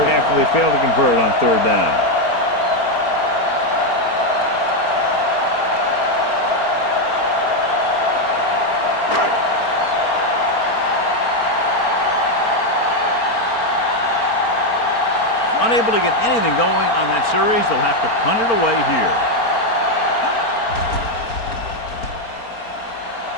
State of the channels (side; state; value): right; late; 4.4 ms